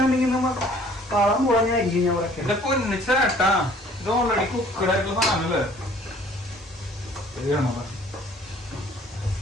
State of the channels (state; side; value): normal; both; correlation 0.55